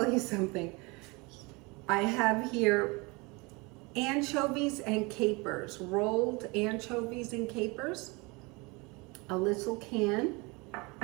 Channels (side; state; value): left; quieter; 26.9 dB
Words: you something. I have here anchovies and capers, rolled anchovies and capers, a little can.